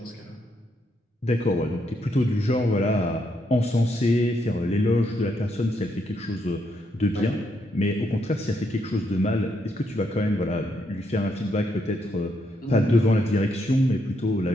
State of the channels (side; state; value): both; normal; correlation 0.77